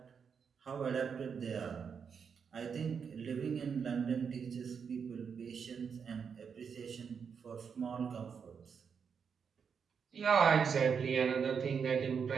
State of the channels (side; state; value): left; quieter; 6.5 dB